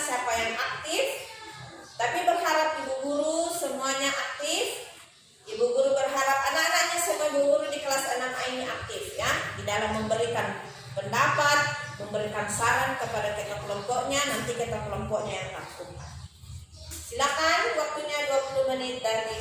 yang aktif, tapi berharap ibu guru semuanya aktif. Ibu guru berharap anak-anaknya semua ibu guru di kelas 6A ini aktif, ya, di dalam memberikan pendapat, memberikan saran kepada ketua kelompoknya, nanti ketua kelompoknya yang lakukan. Silakan, waktunya 20 menit dari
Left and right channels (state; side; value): identical; both; correlation 1.00